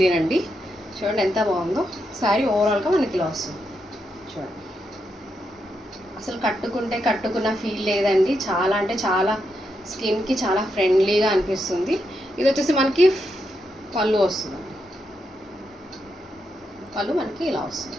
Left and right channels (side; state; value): both; normal; correlation 0.83